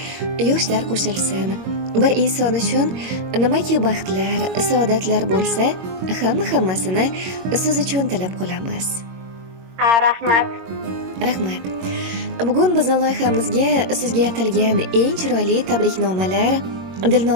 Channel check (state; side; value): late; left; 22 ms